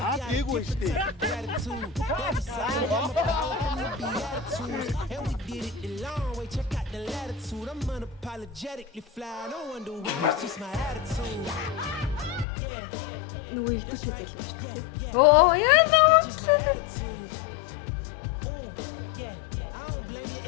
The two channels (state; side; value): drops out; right; at 12.5 s